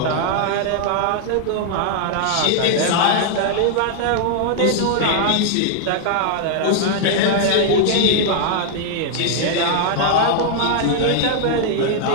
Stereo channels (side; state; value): both; different; correlation 0.00